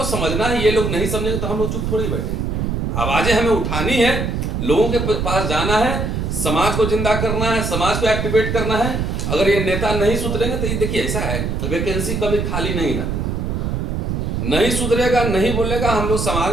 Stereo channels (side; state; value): right; noise; rumble, 1 dB below the sound